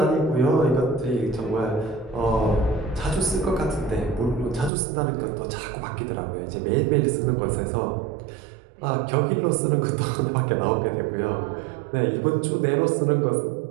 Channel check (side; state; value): left; drops out; at 4.7 s